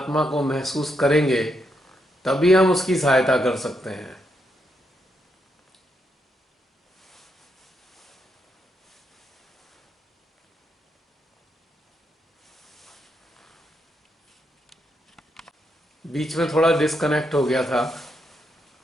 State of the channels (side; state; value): both; normal; correlation 0.80